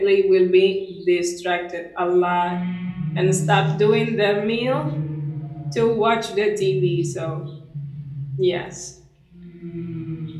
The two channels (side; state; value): both; identical; correlation 1.00